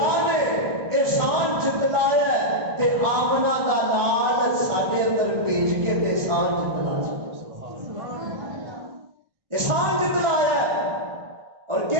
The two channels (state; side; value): late; left; 1.2 ms